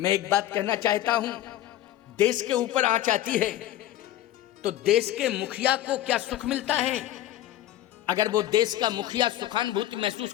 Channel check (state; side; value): quieter; right; 13.1 dB